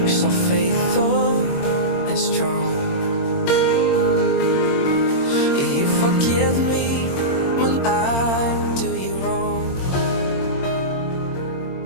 so faithful and strong. You forgive me when I'm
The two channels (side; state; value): right; late; 22 ms